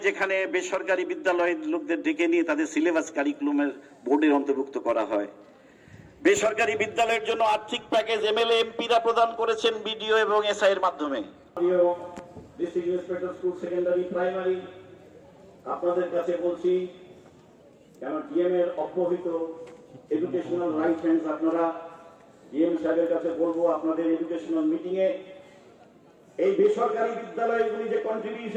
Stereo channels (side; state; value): both; identical; correlation 1.00